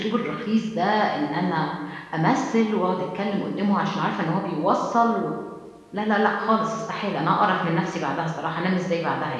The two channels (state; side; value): identical; both; correlation 1.00